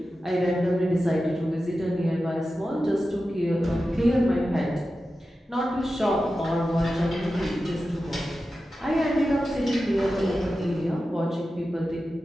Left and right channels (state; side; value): normal; both; correlation 0.92